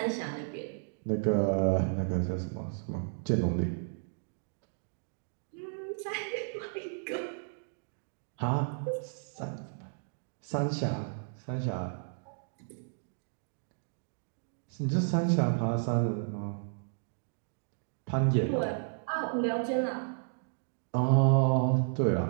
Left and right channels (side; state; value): left; silent; digital silence